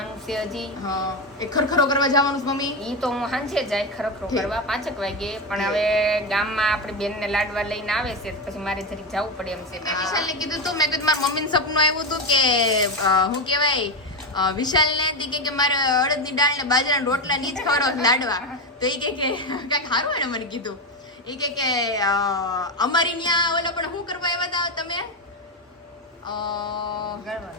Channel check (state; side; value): normal; both; correlation 0.13